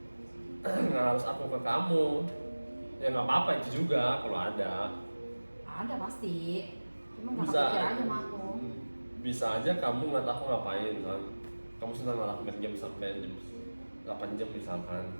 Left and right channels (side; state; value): both; inverted; correlation -1.00